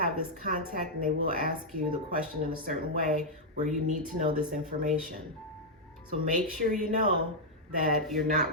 this contact, and they will ask you the question in a certain way where you need to know this information. So make sure you know that you're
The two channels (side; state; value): both; normal; correlation -0.03